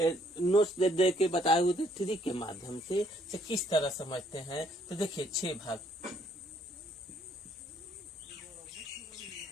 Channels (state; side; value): normal; both; correlation 0.66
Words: दे के बताए हुए थे थ्री के माध्यम से किस तरह समझते हैं। तो देखिए 6 भाग,